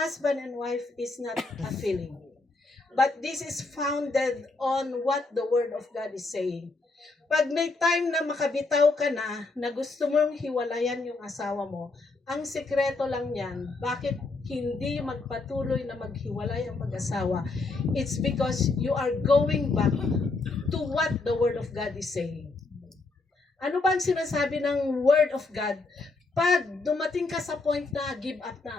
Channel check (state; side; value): quieter; right; 3.6 dB